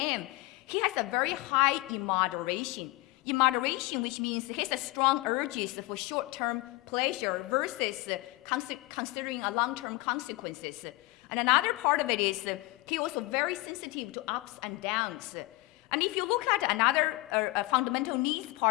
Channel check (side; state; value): right; quieter; 21.8 dB